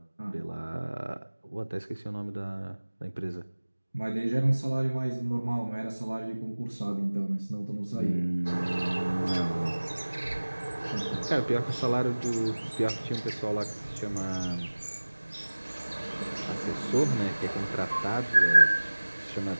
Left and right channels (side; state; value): both; inverted; correlation -1.00